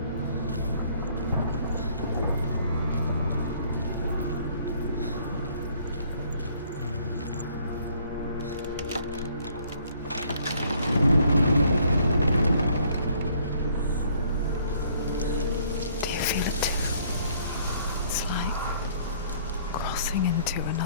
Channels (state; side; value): inverted; both; correlation -0.61